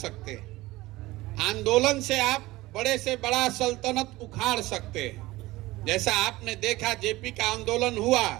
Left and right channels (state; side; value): quieter; left; 19.0 dB